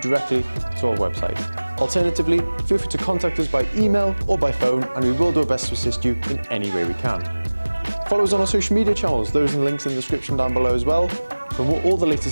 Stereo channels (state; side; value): inverted; both; correlation -1.00